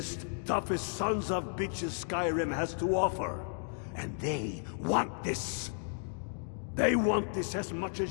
toughest sons of bitches Skyrim has to offer. And they want this. They want this as much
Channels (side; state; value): right; silent; 55 dB below the other